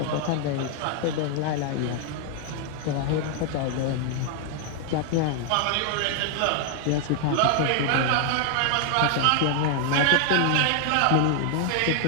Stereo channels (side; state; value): both; different; correlation 0.00